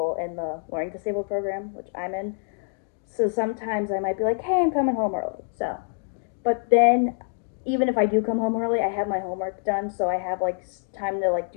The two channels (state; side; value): silent; right; 61 dB below the other